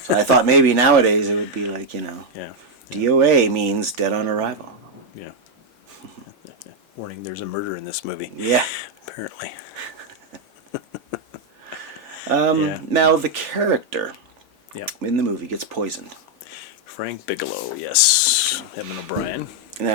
I thought maybe nowadays it would be like, Yeah. D.O.A. means Dead on Arrival. Yeah. Warning, there's a murder in this movie. Yeah. Apparently. Now, the character Yeah. in the movie gets poisoned. Frank Bigelow, yes. Edmond O'Brien.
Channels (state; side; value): normal; both; correlation 0.01